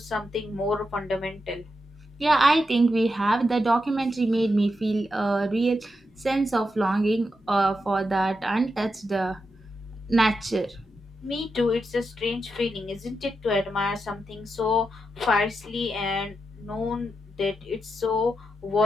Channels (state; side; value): normal; both; correlation 0.86